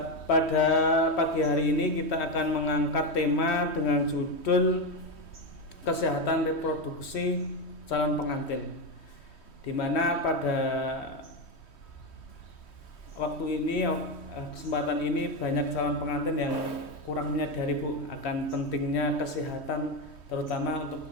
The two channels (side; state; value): right; late; 3.1 ms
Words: Pada pagi hari ini kita akan mengangkat tema dengan judul Kesehatan Reproduksi Calon Pengantin, di mana pada waktu ini, kesempatan ini banyak calon pengantin yang kurang menyadari Bu akan pentingnya kesehatan, terutama